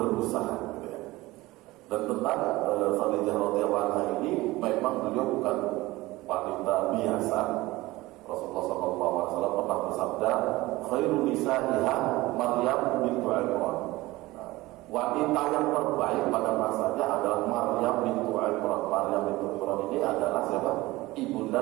Dan tentang Khadijah radhiyallahu anha ini, memang beliau bukan wanita biasa. Rasulullah SAW pernah bersabda, khairun nisa'iha Maryam bintu Imran. Wanita yang terbaik pada masanya adalah Maryam bintu Imran. Maryam bintu Imran ini adalah siapa?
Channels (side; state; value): left; quieter; 19.4 dB